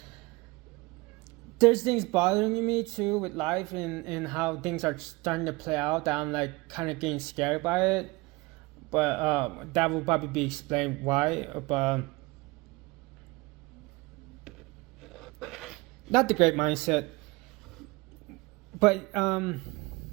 things bothering me too with life and how things are starting to play out, that I'm like kind of getting scared by it. But that will probably be explained why. But not the great mindset. But I'm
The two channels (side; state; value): left; quieter; 23.4 dB